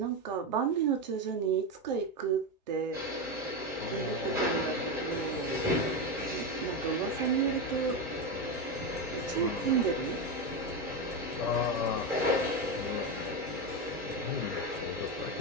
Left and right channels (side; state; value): both; normal; correlation 0.13